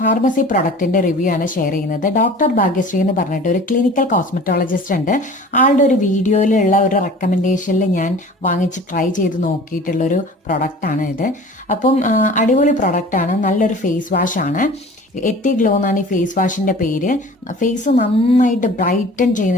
പ്രൊഡക്റ്റിന്റെ റിവ്യൂ ആണ് ഷെയർ ചെയ്യുന്നത്. ഡോക്ടർ ഭാഗ്യശ്രീ എന്ന് പറഞ്ഞിട്ട് ഒരു ക്ലിനിക്കൽ കോസ്മെറ്റോളജിസ്റ്റ് ഉണ്ട്. ആളുടെ ഒരു വീഡിയോയിലുള്ള ഒരു റെക്കമെൻഡേഷനിൽ ഞാൻ വാങ്ങിച്ച് ട്രൈ ചെയ്ത് നോക്കിയിട്ടുള്ള ഒരു പ്രൊഡക്റ്റ് ആണ് ഇത്. അപ്പം അടിപൊളി പ്രൊഡക്റ്റ് ആണ്, നല്ലൊരു ഫേസ് വാഷ് ആണ്. എത്തി ഗ്ലോ എന്നാണ് ഈ ഫേസ് വാഷിന്റെ പേര്. ഫേസ് നന്നായിട്ട് ബ്രൈറ്റൻ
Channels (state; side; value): normal; both; correlation 0.43